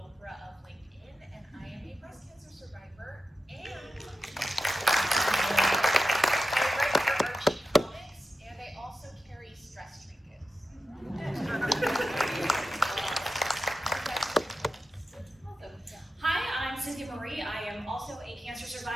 of LinkedIn, and I am a breast cancer survivor, and I write for Archie Comics, and I also carry stress trinkets. Hi, I'm Cynthia Marie. I am also a cancer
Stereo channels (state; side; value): normal; both; correlation 0.91